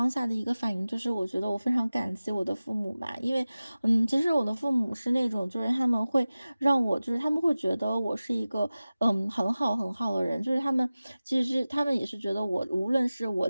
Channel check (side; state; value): both; inverted; correlation -0.97